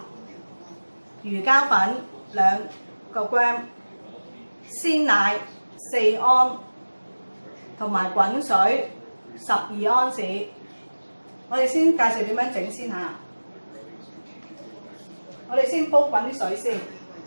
魚膠粉2個 gram， 鮮奶4安，同埋滾水12安士。我哋先介紹點樣整先嚇。我哋先煲滾啲水先。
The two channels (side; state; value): both; inverted; correlation -1.00